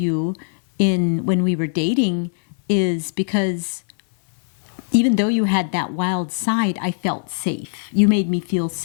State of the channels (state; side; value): silent; right; 58 dB below the other